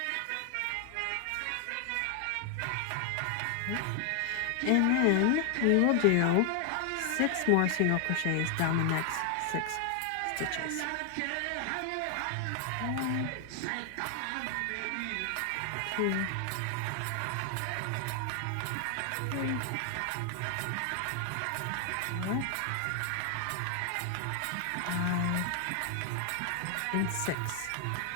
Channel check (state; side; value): different; both; correlation 0.00